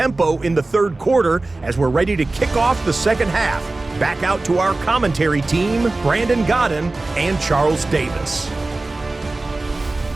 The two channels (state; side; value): quieter; left; 3.1 dB